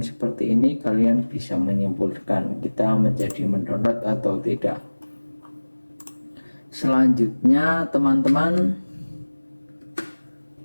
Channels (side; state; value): both; inverted; correlation -1.00